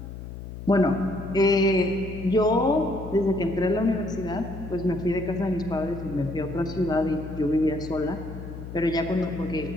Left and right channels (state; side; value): noise; left; hum, 11 dB below the sound